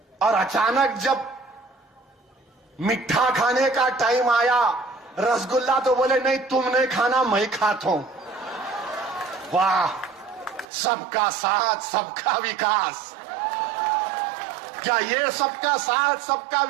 और अचानक जब मिठा खाने का टाइम आया, रसगुल्ला, तो बोले नहीं तुमने खाना मैं खाता हूं। वाह, सबका साथ सबका विकास। क्या ये सबका साथ सबका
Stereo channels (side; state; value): left; drops out; at 10.7 s